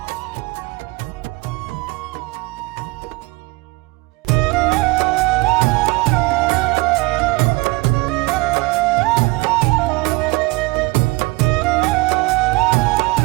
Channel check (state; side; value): quieter; left; 24.1 dB